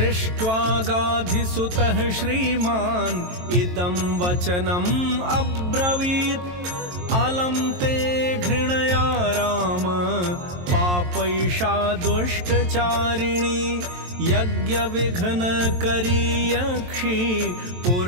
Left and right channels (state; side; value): late; left; 23 ms